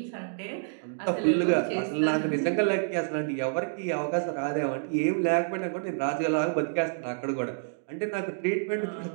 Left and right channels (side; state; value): left; silent; digital silence